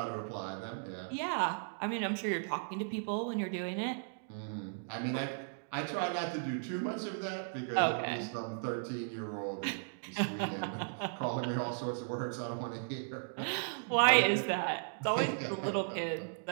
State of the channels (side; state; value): left; silent; digital silence